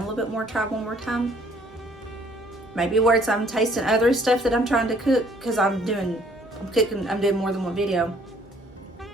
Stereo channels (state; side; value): normal; both; correlation 0.60